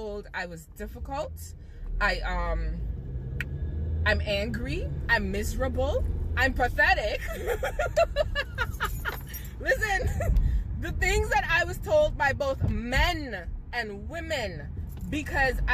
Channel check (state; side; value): identical; both; correlation 1.00